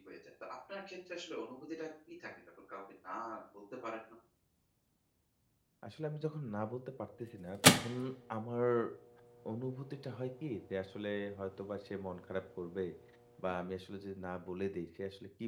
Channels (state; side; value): identical; both; correlation 1.00